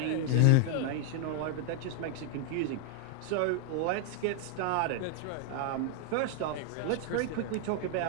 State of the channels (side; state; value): both; different; correlation 0.00